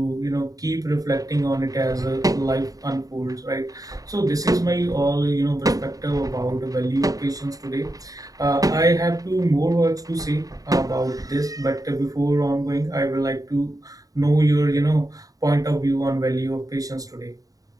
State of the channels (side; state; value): left; late; 0.17 ms